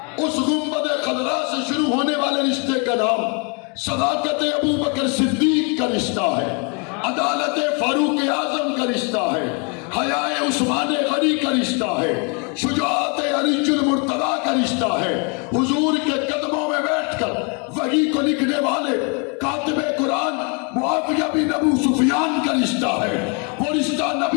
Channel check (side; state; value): right; quieter; 34.9 dB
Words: اس گنبد خضراء سے شروع ہونے والے رشتے کا نام صداقت ابو بکر صدیق کا رشتہ ہے، عدالت فاروق اعظم کا رشتہ ہے، حیاء عثمان غنی کا رشتہ ہے، شجاعت علی المرتضیٰ کا رشتہ ہے، حضور کے قدموں میں بیٹھ کر وحی کو لکھنے والے کاتب قرآن معاویہ بن ابو سفیان کا رشتہ ہے، وہ رشتہ